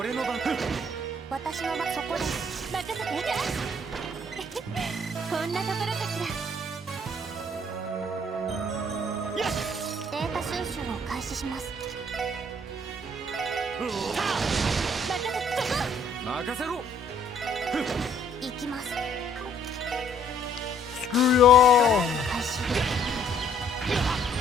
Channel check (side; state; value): both; normal; correlation 0.62